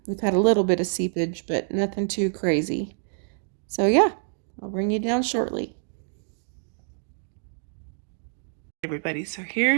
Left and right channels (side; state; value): left; silent; digital silence